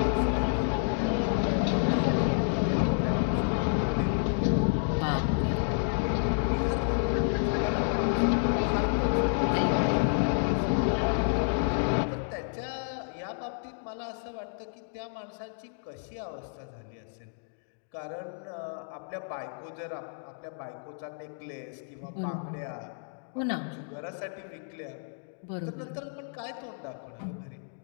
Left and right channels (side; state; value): right; silent; digital silence